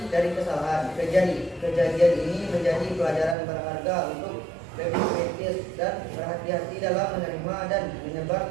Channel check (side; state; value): left; drops out; at 3.4 s